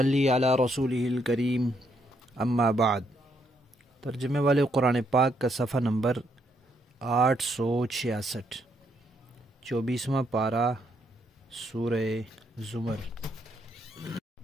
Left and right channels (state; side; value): normal; both; correlation 0.75